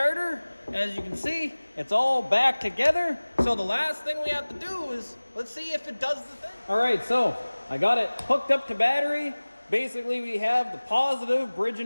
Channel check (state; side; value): inverted; both; correlation -1.00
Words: As you can see, it's all back together. So the last thing we have to do is, let's see if it does the thing. All right, so I got it hooked up to battery. Basically, we have the positive